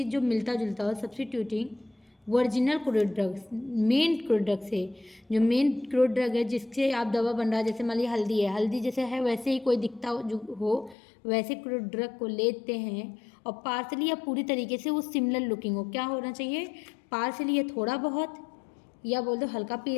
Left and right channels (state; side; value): drops out; right; at 11.0 s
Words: जो मिलता जुलता हो, substituting original crude drugs, main crude drug से, जो मेन क्रूड ड्रग है जिससे आप दवा बन रहा है, जैसे मान लीजिए हल्दी है, हल्दी जैसे है वैसे ही कोई दिखता हो जो हो, वैसे क्रूड ड्रग को लेते हैं और पार्सली या पूरी तरीके से वो सिमिलर लुकिंग हो। क्या होना चाहिए, पार्सली या थोड़ा बहुत, या बोल दो हल्का